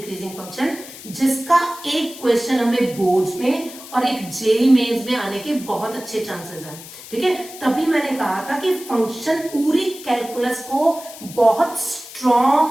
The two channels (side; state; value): left; noise; hiss, 15 dB below the sound